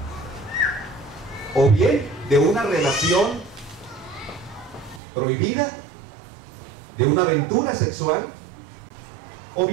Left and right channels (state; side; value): drops out; left; at 5.0 s